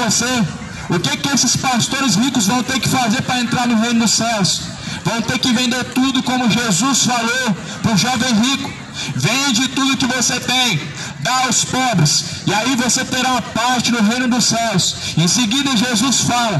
o que esses pastores ricos vão ter que fazer para entrar no reino dos céus? Vão ter que vender tudo, como Jesus falou para o jovem rico. Vende tudo que você tem, dá aos pobres, e aí você terá uma parte no reino dos céus. Em seguida Jesus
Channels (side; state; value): both; identical; correlation 1.00